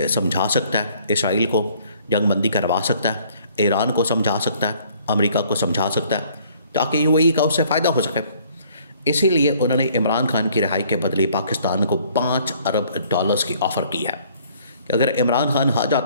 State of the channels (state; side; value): inverted; both; correlation -0.59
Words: समझा सकता है, इसराइल को जंगबंदी करवा सकता है, ईरान को समझा सकता है, अमेरिका को समझा सकता है, ताकि यूएई का उससे फ़ायदा हो सके। इसीलिए उन्होंने इमरान खान की रिहाई के बदले पाकिस्तान को $5 अरब की ऑफ़र की है कि अगर इमरान खान आ